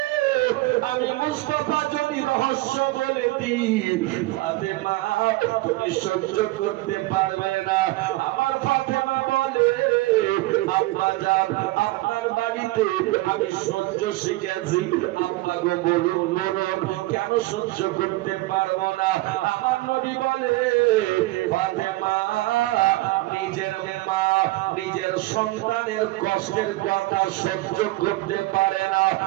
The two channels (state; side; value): quieter; left; 19.8 dB